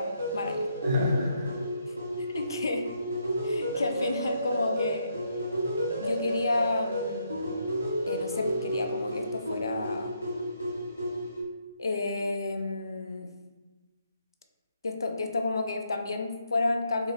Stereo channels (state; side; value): inverted; both; correlation -0.75